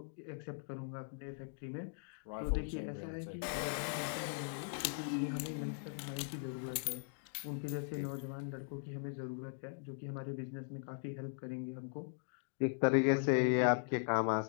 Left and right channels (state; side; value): silent; right; digital silence